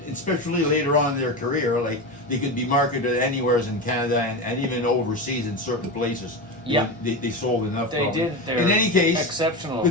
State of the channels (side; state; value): both; normal; correlation 0.19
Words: especially later on in their career, like they could be marketed anywhere in Canada and even overseas in certain places. Yeah. They sold enough. They probably. did. They're In any case, exceptional. the